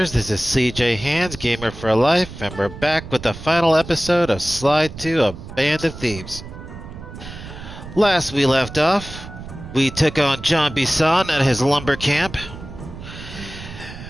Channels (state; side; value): noise; right; rumble, 13 dB below the sound